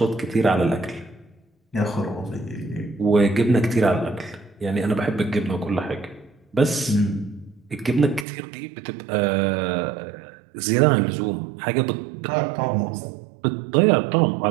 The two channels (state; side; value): drops out; left; at 8.2 s